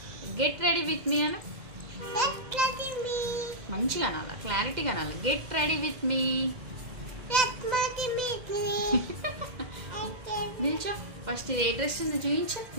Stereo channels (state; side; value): late; left; 2.0 ms